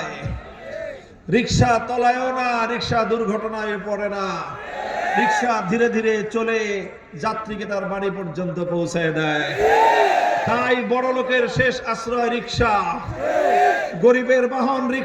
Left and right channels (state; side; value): identical; both; correlation 1.00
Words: রিকশা তলায়ও না, রিকশা দুর্ঘটনায় পড়ে না, রিকশা ধীরে ধীরে চলে যাত্রীকে তার বাড়ি পর্যন্ত পৌঁছায় দেয়। তাই বড় লোকের শেষ আশ্রয় রিকশা, গরিবের বাহন